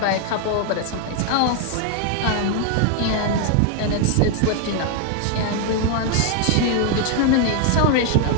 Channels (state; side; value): different; both; correlation 0.00